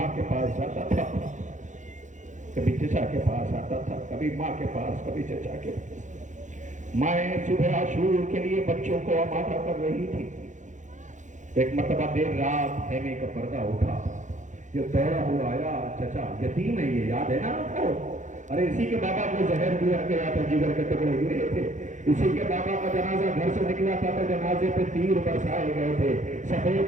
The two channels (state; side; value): late; left; 0.36 ms